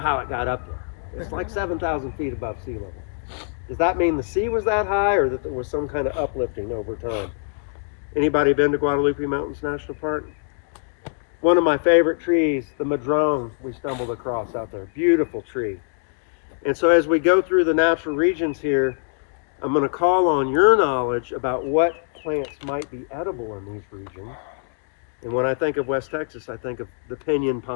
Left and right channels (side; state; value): right; silent; digital silence